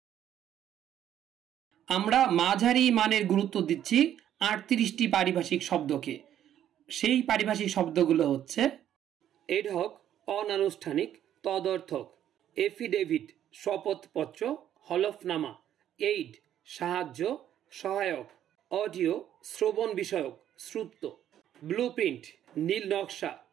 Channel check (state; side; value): quieter; left; 10.8 dB